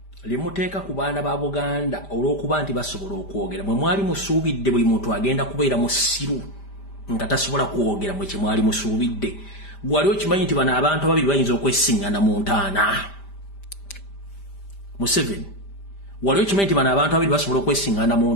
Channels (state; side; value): late; right; 5.0 ms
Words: limuteeka ku baana ba Buganda olw'okuba nti basobola okwogera mwe mwali musuubidde buli muntu agenda kubeera musiru nga tasobola kwogera mwe kye mwali musuubidde gwali okimanyi nti bano abantu ababiri bayinza okwesiŋŋana mu ntaana Museveni wali okimanyi nti bano abantu ababiri basobola okwesiŋŋana mu